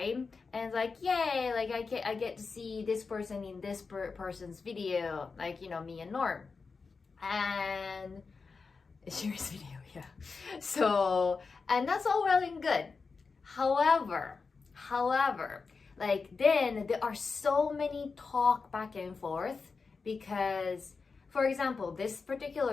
And it's like, yay, like I get to see this person in this person's video, like, you know, me and Norm. And serious video, yeah. So, and that's all well and good. However, like then there are so many talk back and forth, because, for example, this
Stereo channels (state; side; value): quieter; right; 4.7 dB